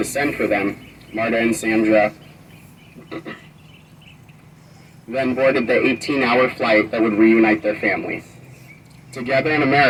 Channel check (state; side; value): identical; both; correlation 1.00